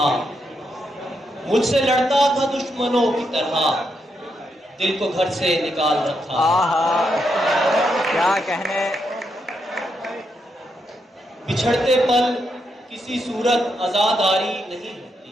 मुझसे लड़ता था दुश्मनों की तरह, दिल को घर से निकाल रखा। आहा, क्या कहने। बिछड़ते पल किसी सूरत आजादारी नहीं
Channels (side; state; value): both; normal; correlation 0.81